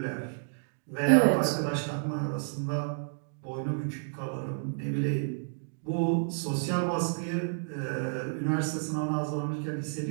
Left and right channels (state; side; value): silent; left; digital silence